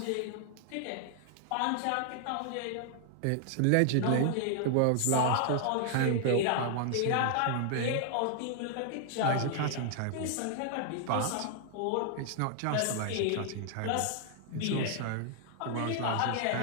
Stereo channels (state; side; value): different; both; correlation 0.00